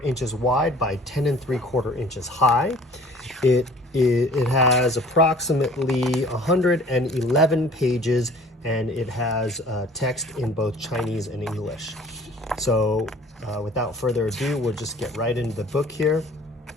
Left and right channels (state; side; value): normal; both; correlation 0.50